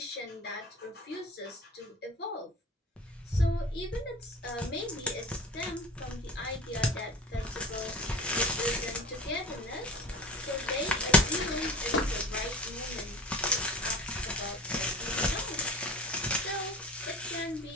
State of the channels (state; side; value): normal; both; correlation 0.36